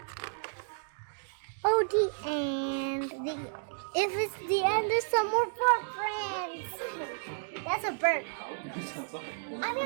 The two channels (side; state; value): left; silent; digital silence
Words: Oh, the end. If it's the end, there's some more footprints. That's a bird. I